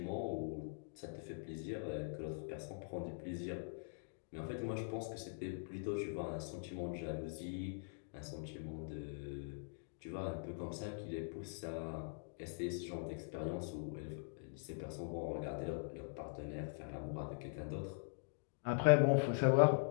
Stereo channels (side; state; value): right; silent; digital silence